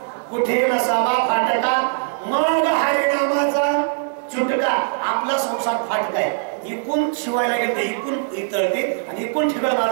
कुठे नसावा फाटका मग हरिनामाचा चुटका. आपला संसार फाटका आहे. इकून शिवायला गेलं इकून इतळते आणि इकून ठिकाण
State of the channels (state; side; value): silent; left; 65 dB below the other